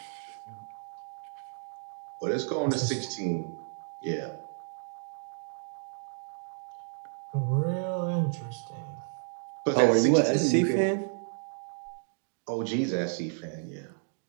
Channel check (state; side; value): silent; left; digital silence